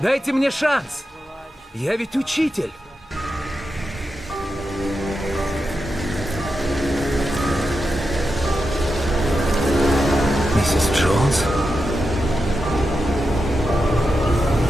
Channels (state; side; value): normal; both; correlation 0.88